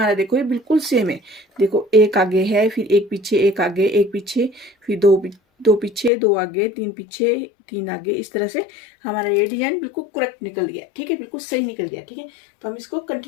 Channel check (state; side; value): drops out; right; at 6.1 s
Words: देखो ये बिल्कुल सेम है। देखो 1 आगे है, फिर 1 पीछे 1 आगे, 1 पीछे, फिर 2 पीछे 2 आगे, 3 पीछे 3 आगे। इस तरह से हमारा ये डिजाइन बिल्कुल करेक्ट निकल गया। ठीक है, बिल्कुल सही निकल गया। ठीक है, तो हम इसको